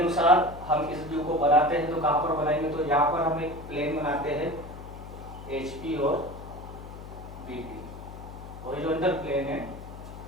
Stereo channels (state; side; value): noise; left; hum, 13 dB below the sound